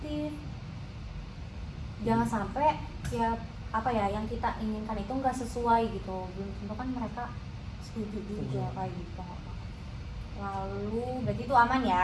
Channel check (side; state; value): both; identical; correlation 1.00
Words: Jangan sampai ya apa ya yang kita inginkan itu nggak sesuai gitu. Belum tentu kan mereka setuju juga kayak gitu. Lalu berarti itu aman